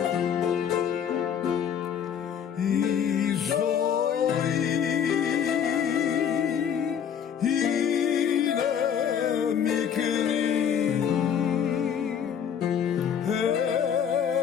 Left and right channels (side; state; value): right; quieter; 8.2 dB